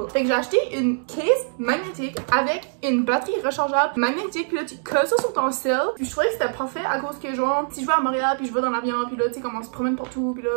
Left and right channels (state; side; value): silent; left; digital silence